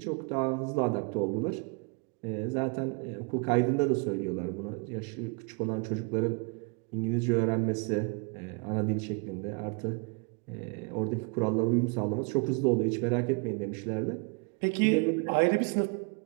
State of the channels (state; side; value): quieter; left; 32.9 dB